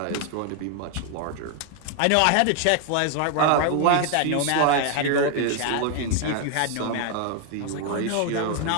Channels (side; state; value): both; different; correlation 0.00